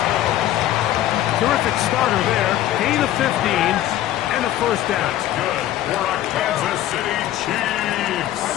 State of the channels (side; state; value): right; quieter; 13.3 dB